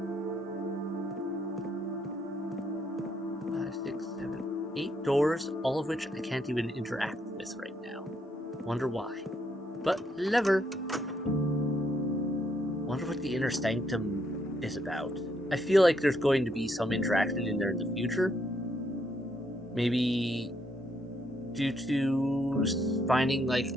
5, 6, 7, 8 doors, all of which I can't even interact with right now. Wonder why. But lever. Wonder what the Inner Sanctum is about. I feel like there's going to be some interaction in there in the future. Maybe due to finding, like,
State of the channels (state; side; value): normal; both; correlation 0.74